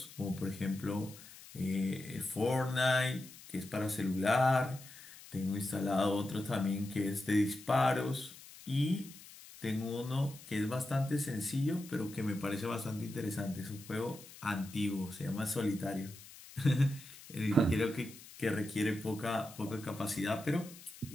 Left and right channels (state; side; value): noise; left; hiss, 18 dB below the sound